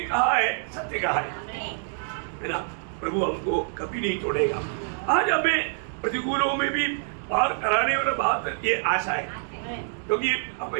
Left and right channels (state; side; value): silent; left; digital silence